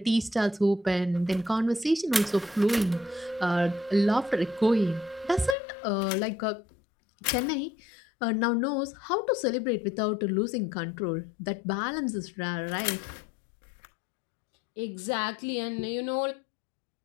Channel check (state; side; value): drops out; right; at 5.6 s